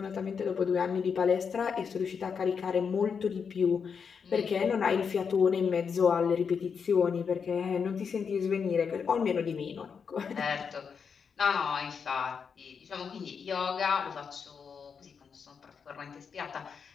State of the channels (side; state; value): right; quieter; 6.2 dB